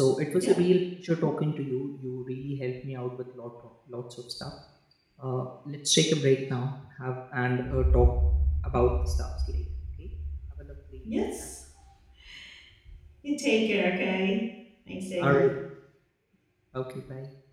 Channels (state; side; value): identical; both; correlation 1.00